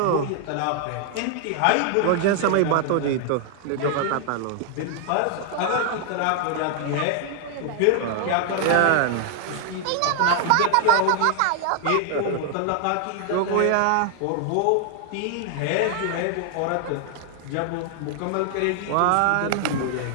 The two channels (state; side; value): different; both; correlation 0.00